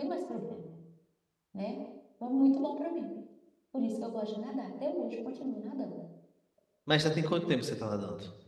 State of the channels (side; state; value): both; identical; correlation 1.00